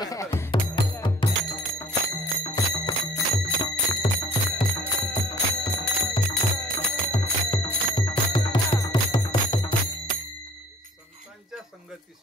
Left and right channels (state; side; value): normal; both; correlation 0.52